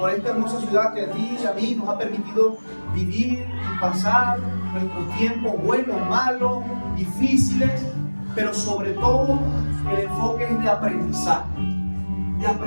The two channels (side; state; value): both; inverted; correlation -1.00